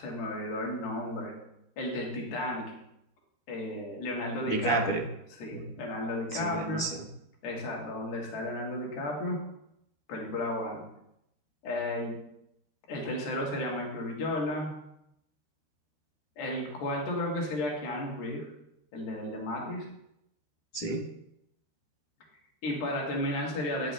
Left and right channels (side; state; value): right; late; 13 ms